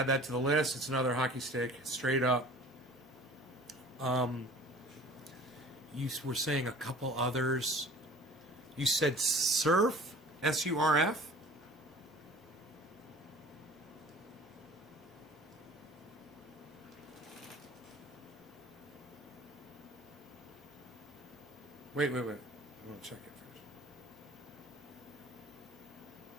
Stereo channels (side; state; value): both; normal; correlation 0.46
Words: that to the list. It's another hockey stick, straight up. You were saying a couple others. You said surf, SURF. Wait. I want to check it first.